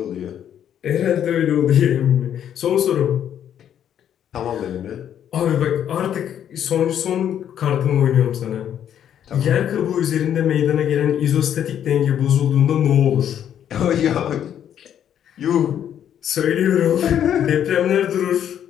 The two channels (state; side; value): quieter; right; 9.7 dB